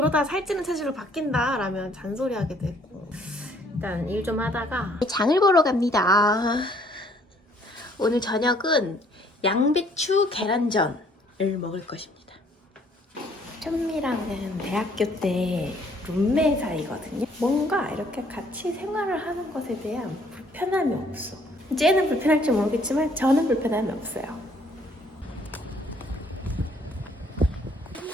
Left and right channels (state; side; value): normal; both; correlation 0.62